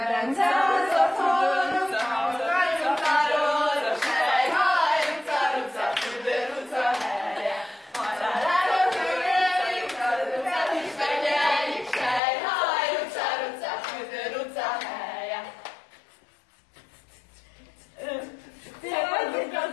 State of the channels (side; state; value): right; drops out; at 12.2 s